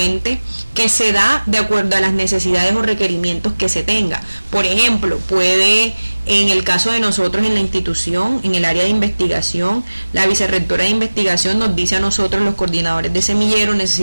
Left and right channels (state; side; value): inverted; both; correlation -1.00